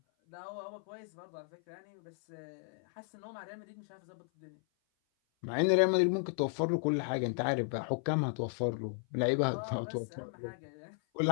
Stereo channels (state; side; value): silent; right; 55 dB below the other